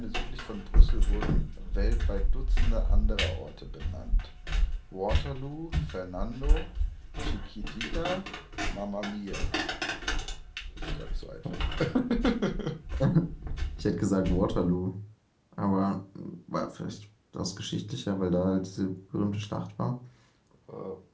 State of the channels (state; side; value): identical; both; correlation 1.00